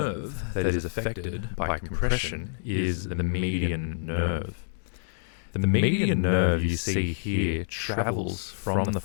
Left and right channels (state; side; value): silent; right; digital silence